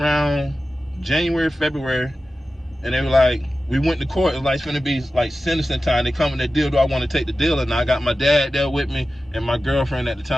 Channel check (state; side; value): normal; both; correlation 0.94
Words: January, February, and they were like, we went to court. It was like, it's gonna be like sentencing time. They come in that deal. Do I want to take the deal? And I got my dad there with me and my girlfriend at the